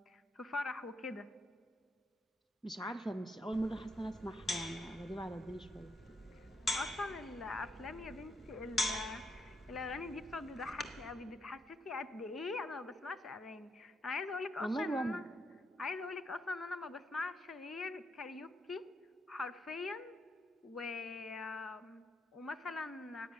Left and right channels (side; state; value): both; normal; correlation 0.77